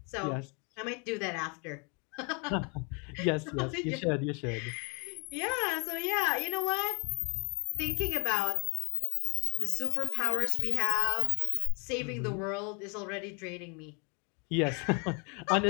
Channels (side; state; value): right; quieter; 33.5 dB